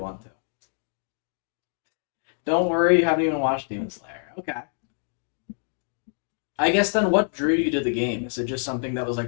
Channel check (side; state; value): right; silent; digital silence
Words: to. Don't worry, you haven't even watched Demon Slayer. Okay. I guess then what drew you to the game? Is it just something that was